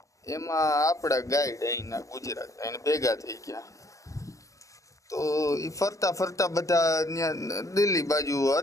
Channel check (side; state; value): right; late; 0.16 ms